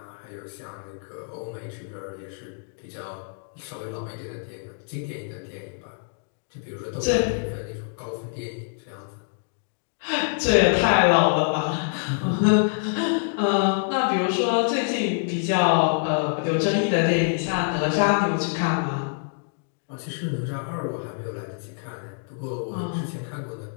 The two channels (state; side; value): silent; right; digital silence